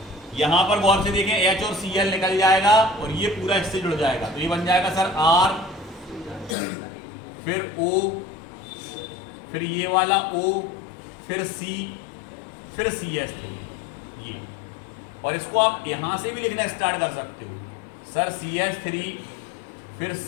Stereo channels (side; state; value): right; drops out; at 6.6 s